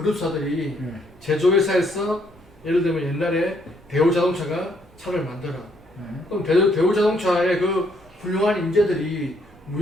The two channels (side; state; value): both; normal; correlation 0.71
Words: 네. 제조회사에서 예를 들면 옛날에 대우자동차가 차를 만들어. 네. 그럼 대우자동차의 그 훌륭한 인재들이